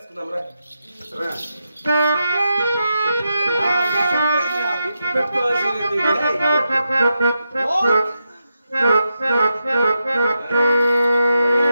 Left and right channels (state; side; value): inverted; both; correlation -0.87